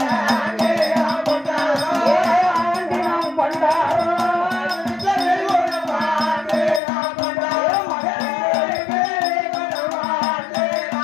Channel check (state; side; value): drops out; right; at 6.8 s